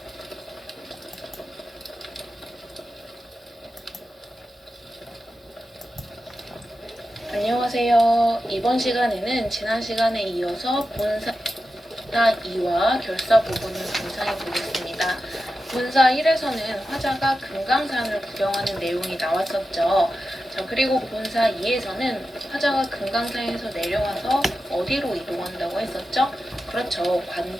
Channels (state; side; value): normal; both; correlation 0.91